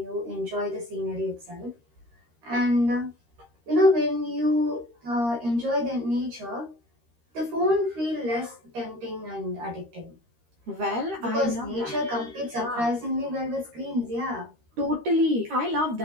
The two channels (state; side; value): late; left; 13 ms